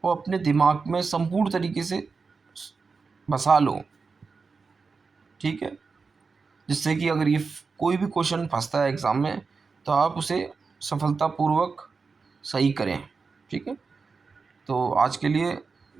और अपने दिमाग में संपूर्ण तरीके से बसा लो। ठीक है, जिससे कि अगर ये कोई भी क्वेश्चन फंसता है एग्ज़ाम में तो आप उसे सफलतापूर्वक सही करें। ठीक है, तो आज के लिए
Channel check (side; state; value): left; quieter; 4.7 dB